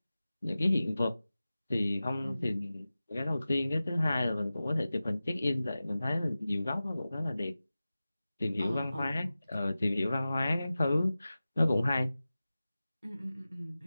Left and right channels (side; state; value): both; inverted; correlation -0.96